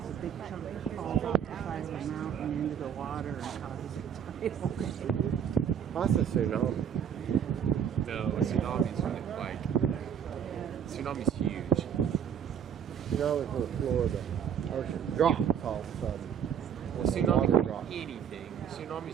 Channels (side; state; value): left; quieter; 8.3 dB